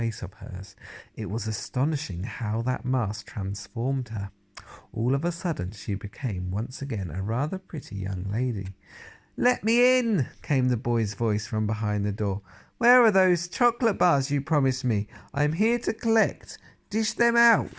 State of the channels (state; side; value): identical; both; correlation 1.00